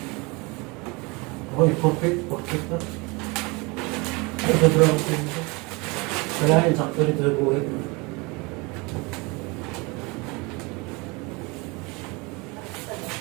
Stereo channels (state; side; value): quieter; left; 26.9 dB